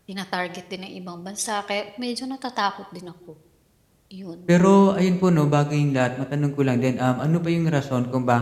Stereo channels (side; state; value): both; identical; correlation 1.00